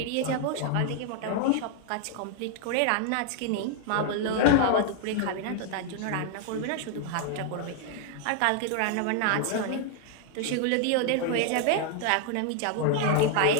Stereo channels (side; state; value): both; different; correlation 0.00